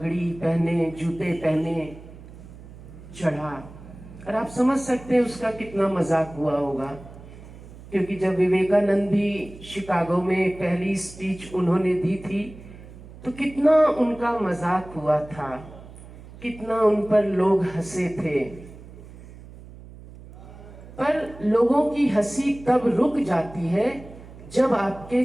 पहने, जूते पहने चढ़ा। और आप समझ सकते हैं उसका कितना मजाक हुआ होगा, क्योंकि जब विवेकानंद भी शिकागो में पहली स्पीच उन्होंने दी थी तो कितना उनका मजाक हुआ था, कितना उन पर लोग हंसे थे। पर लोगों की हंसी तब रुक जाती है जब आपके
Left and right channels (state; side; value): noise; right; hum, 17 dB below the sound